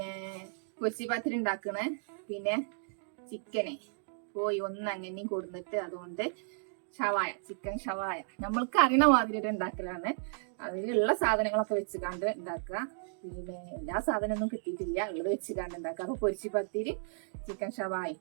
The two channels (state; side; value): silent; left; digital silence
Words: പൊരിച്ചി പത്തിരി ഉണ്ടാക്കണേ, ചിക്കനെ പോയി അങ്ങനെ കൊടുത്തിട്ട് അതുകൊണ്ട് ചിക്കൻ ഷവായ നമ്മൾക്ക് അറിയണ മാതിരി ഉണ്ടാക്കലാണ്. അതിലുള്ള സാധനങ്ങളൊക്കെ വെച്ചുകാണ്ട് ഉണ്ടാക്കുക. എല്ലാ സാധനമൊന്നും കിട്ടിയിട്ടില്ല, ഉള്ളത് വെച്ചുകാണ്ട് ഉണ്ടാക്കുക. അപ്പൊ പൊരിച്ചി പത്തിരി ചിക്കൻ ഷവായ